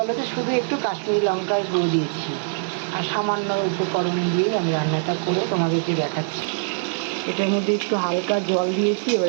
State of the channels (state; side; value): silent; left; digital silence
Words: তো, শুধু একটু কাশ্মীরি লঙ্কার গুঁড়ো দিয়েছি আর সামান্য উপকরণ দিয়েই আমি রান্নাটা করে তোমাদেরকে দেখাচ্ছি। এটার মধ্যে একটু হালকা জল দিয়েছি, এবার